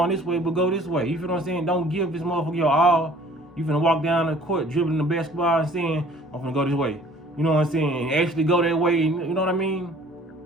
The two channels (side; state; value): both; normal; correlation 0.53